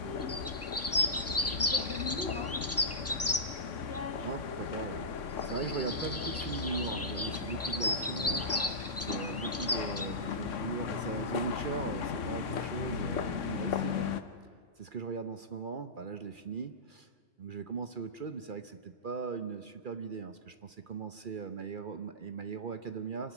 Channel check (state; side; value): normal; both; correlation -0.16